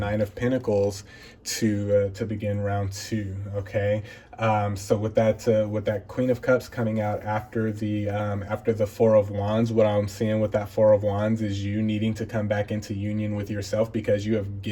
of Pentacles to begin round two. Okay, so with that Queen of Cups coming out after the Four of Wands, what I'm seeing with that Four of Wands is you needing to come back into union with yourself, because you have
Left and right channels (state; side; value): identical; both; correlation 1.00